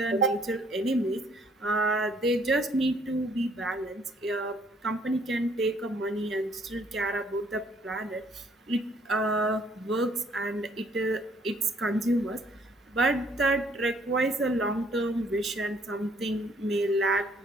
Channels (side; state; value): both; normal; correlation 0.63